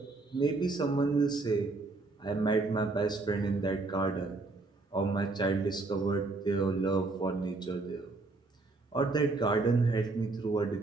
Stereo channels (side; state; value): left; quieter; 3.4 dB